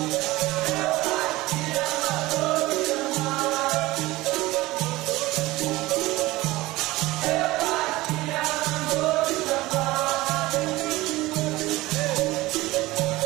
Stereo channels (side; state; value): left; quieter; 19.1 dB